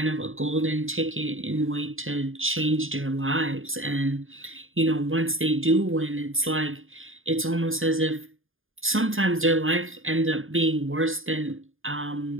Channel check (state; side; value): late; left; 0.59 ms